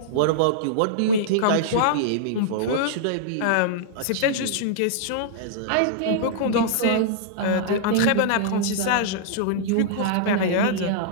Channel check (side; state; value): both; different; correlation -0.02